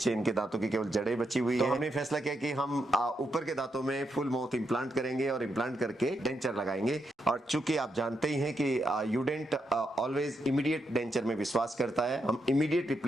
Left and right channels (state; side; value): normal; both; correlation 0.82